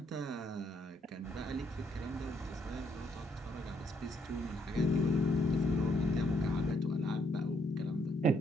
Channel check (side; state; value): both; normal; correlation 0.72